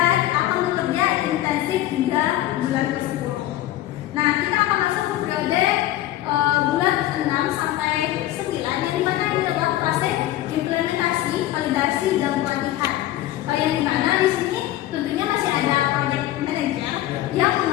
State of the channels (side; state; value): right; quieter; 14.4 dB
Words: akan bekerja intensif hingga bulan ke-10. Nah, kita akan masuk ke periode bulan 6 sampai 9, yang dimana ini adalah fase implementasi, validasi, dan pelatihan. Yang dimana di sini tentunya masih ada project manager yang